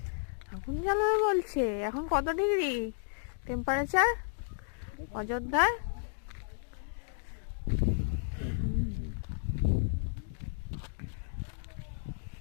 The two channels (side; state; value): right; silent; digital silence